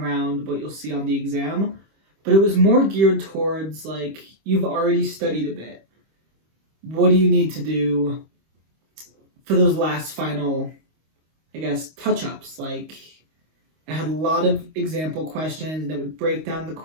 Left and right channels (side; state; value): left; late; 25 ms